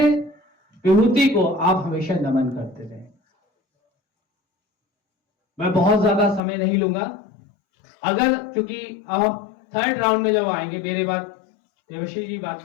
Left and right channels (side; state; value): right; drops out; at 6.4 s